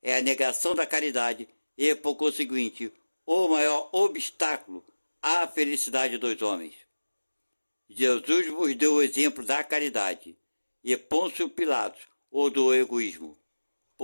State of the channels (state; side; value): inverted; both; correlation -1.00